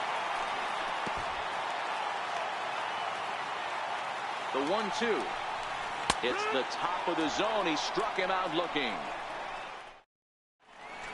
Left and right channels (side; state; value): both; identical; correlation 1.00